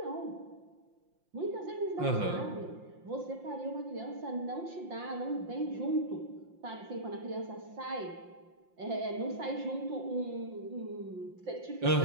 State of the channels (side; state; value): left; late; 5.7 ms